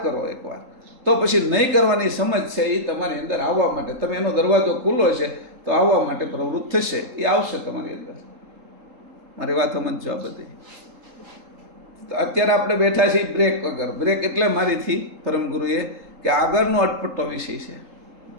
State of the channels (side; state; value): left; late; 3.8 ms